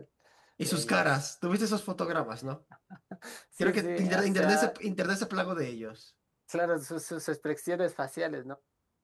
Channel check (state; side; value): identical; both; correlation 1.00